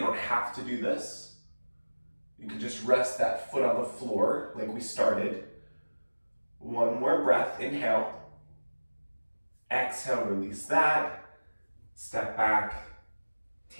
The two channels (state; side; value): inverted; both; correlation -1.00